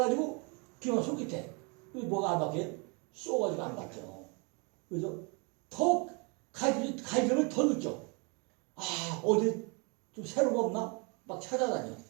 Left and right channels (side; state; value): left; quieter; 32.4 dB